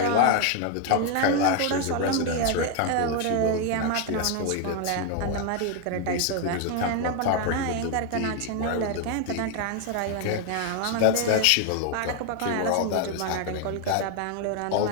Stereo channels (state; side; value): different; both; correlation 0.01